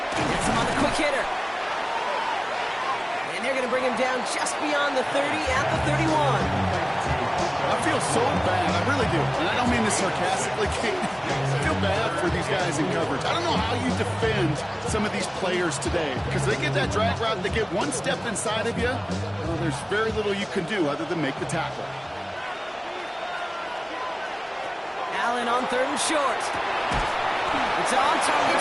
him on the quick hitter. And they're going to bring him down just beyond the 30 at the 31. I feel so bad. I really do. And I don't mean this sarcastically. I feel bad for these guys in coverage. I don't know how you defend some of these players today because they get that drag route, they get one step inside of you. Well, there's very little you can do other than make the tackle. Allen on 3rd and short. It's on target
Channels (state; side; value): identical; both; correlation 1.00